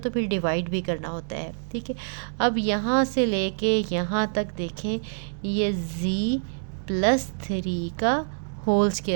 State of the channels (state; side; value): silent; left; digital silence